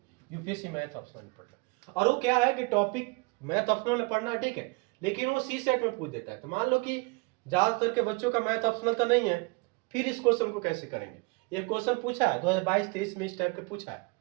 यूपीएससी मैथ ऑप्शनल में पढ़ना है। और वो क्या है कि टॉपिक मैथ ऑप्शनल में पढ़ना है, ठीक है, लेकिन वो सी सेट में पूछ देता है। तो मान लो कि ज्यादातर के बच्चों का मैथ ऑप्शनल तो नहीं है, फिर इस क्वेश्चन को कैसे करेंगे। ये क्वेश्चन पूछा है 2022-23 में, इस टाइप के पूछा है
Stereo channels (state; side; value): quieter; left; 28.7 dB